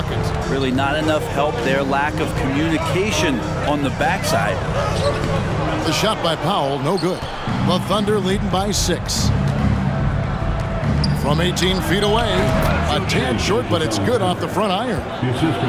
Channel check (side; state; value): both; identical; correlation 1.00